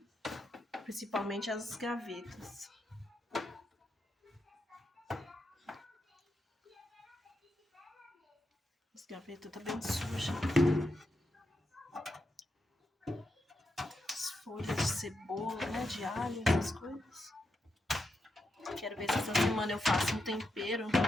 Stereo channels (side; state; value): both; normal; correlation 0.85